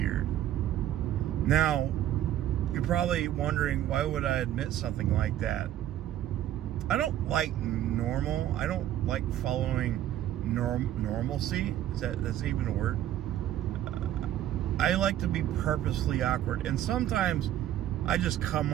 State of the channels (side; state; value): left; quieter; 12.2 dB